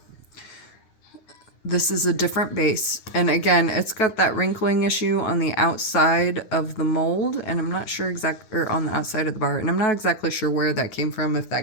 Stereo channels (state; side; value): late; right; 9.2 ms